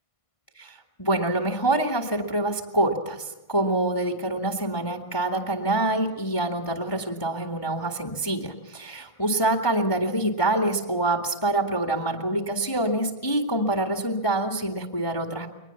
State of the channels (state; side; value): late; right; 1.5 ms